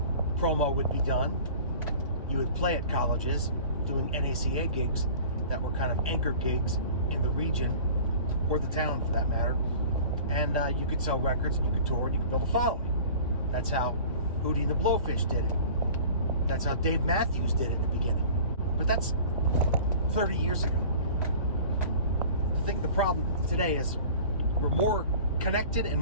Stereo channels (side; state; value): both; inverted; correlation -0.43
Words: promo would be done. You would play at colleges doing NACA gigs that were kind of anchor gigs in the region, or the town for that matter. And you could sell records, and you could tour, and you could build a following. That's how Hootie and the Blowfish did it. That's how Dave Matthews did it at the beginning. But that's 30 years ago. I think the problem today is we're more connected and